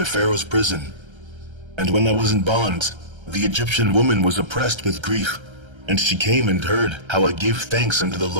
Pharaoh's prison. And when I was in bonds, the Egyptian woman was oppressed with grief. And she came and heard how I gave thanks unto the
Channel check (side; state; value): left; late; 1.3 ms